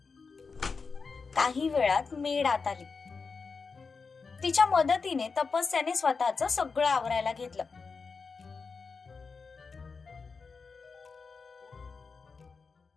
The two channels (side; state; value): right; quieter; 4.8 dB